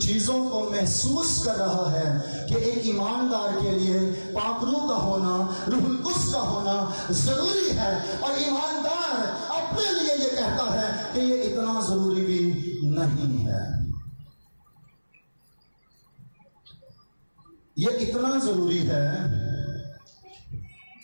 چیزوں کو محسوس کر رہا ہے کہ ایک ایماندار کے لیے پاک روح کا ہونا، روح القدس کا ہونا ضروری ہے، اور ایماندار اپنے لیے یہ کہتا ہے کہ یہ اتنا ضروری بھی نہیں ہے. یہ اتنا ضروری ہے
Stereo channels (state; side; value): inverted; both; correlation -1.00